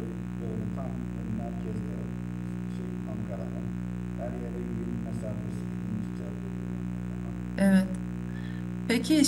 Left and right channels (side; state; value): both; identical; correlation 1.00